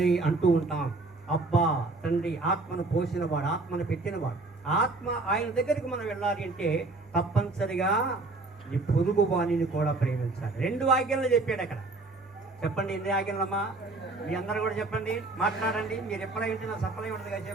అంటూ ఉంటాం. అబ్బా తండ్రి, ఆత్మను పోసినవాడు, ఆత్మను పెట్టినవాడు. ఆత్మ ఆయన దగ్గరికి మనం వెళ్ళాలి అంటే తప్పనిసరిగా నీ పొరుగు వాణిని కూడా ప్రేమించాలి. 2 ఆజ్ఞలు చెప్పాడు అక్కడ. చెప్పండి, ఎన్ని ఆజ్ఞలమ్మా? మీ అందరూ కూడా చెప్పండి, మాట్లాడండి. మీరు ఎప్పుడైతే నా సఫలై ఉంటుంది కదా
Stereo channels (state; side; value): quieter; left; 3.3 dB